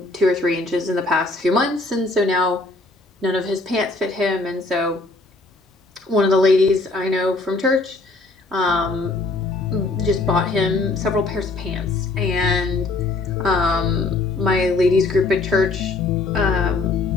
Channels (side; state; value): right; quieter; 3.3 dB